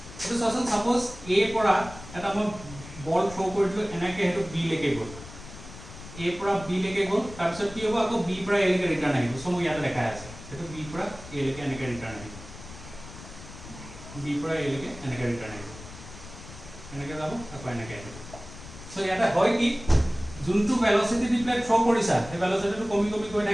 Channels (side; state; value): left; noise; rumble, 15 dB below the sound